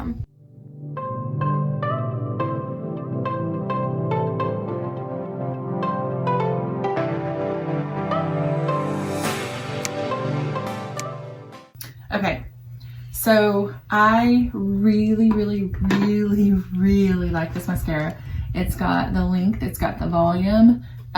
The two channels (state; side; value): identical; both; correlation 1.00